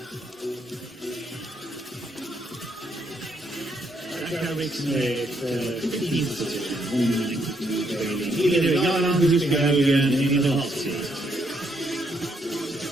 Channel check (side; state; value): both; normal; correlation 0.74